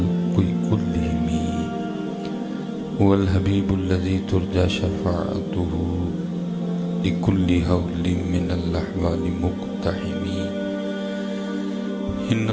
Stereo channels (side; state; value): both; identical; correlation 1.00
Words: كلهم هو الحبيب الذي ترجى شفاعته لكل هول من الأحوال مقتحم إن